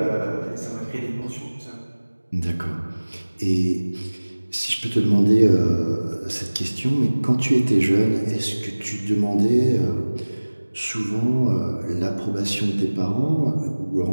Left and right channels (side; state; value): both; inverted; correlation -1.00